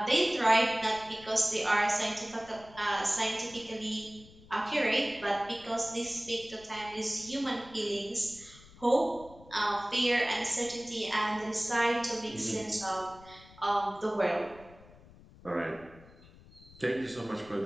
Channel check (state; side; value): noise; left; rumble, 22 dB below the sound